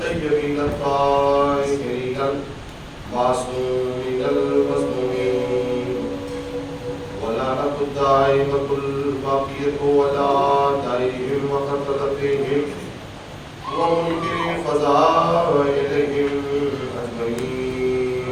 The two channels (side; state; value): both; identical; correlation 1.00